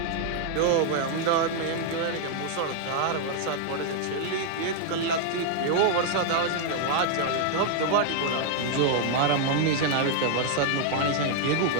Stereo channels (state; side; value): different; both; correlation 0.00